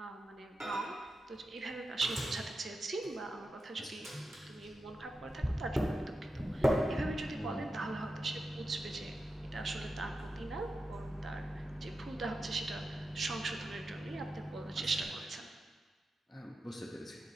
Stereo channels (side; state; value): both; normal; correlation 0.90